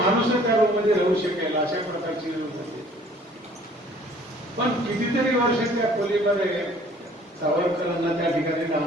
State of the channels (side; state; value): both; normal; correlation 0.54